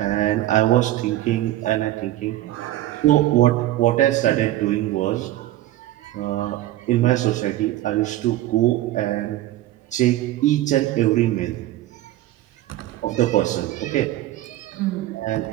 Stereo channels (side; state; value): left; quieter; 14.9 dB